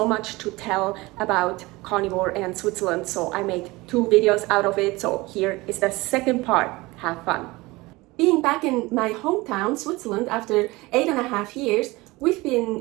much to tell about carnivore and Switzerland, so I made 2 videos out of it. So here is the second part. Have fun. Being back in my hometown, Switzerland, after 8.5 years, we've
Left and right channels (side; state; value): left; quieter; 21.8 dB